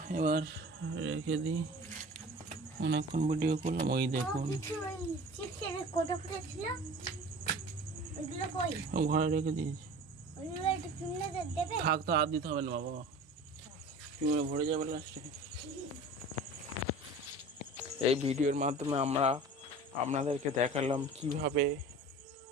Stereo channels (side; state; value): both; normal; correlation 0.40